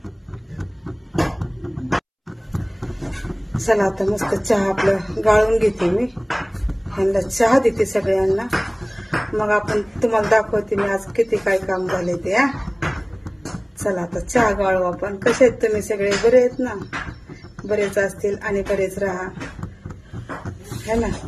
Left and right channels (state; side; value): identical; both; correlation 1.00